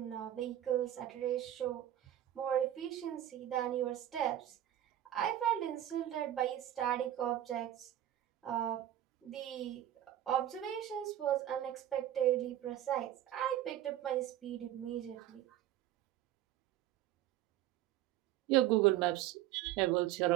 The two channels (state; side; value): quieter; left; 12.4 dB